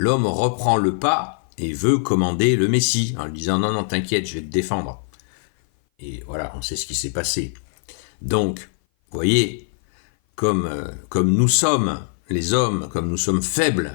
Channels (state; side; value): silent; right; 57 dB below the other